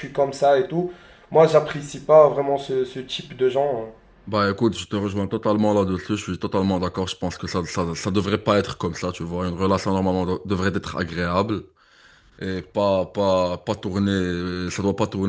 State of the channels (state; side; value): identical; both; correlation 1.00